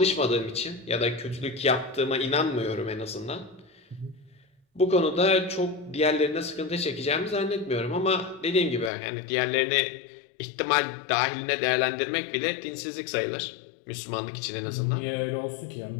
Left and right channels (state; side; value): drops out; right; at 8.9 s